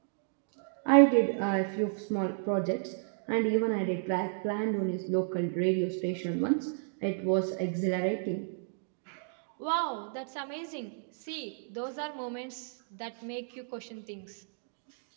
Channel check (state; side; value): silent; left; digital silence